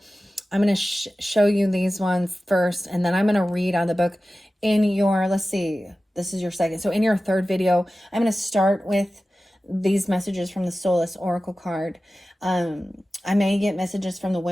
I'm going to show you these ones first, and then I'm going to read on the book in your, let's see, this is your second. So in your third video, I'm going to start with these messages from the Solace Oracle card. I may get messages from the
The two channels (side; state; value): both; normal; correlation 0.95